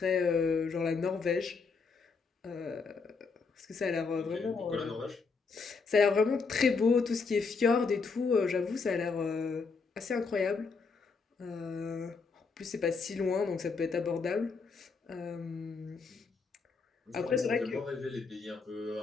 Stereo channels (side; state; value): right; quieter; 4.7 dB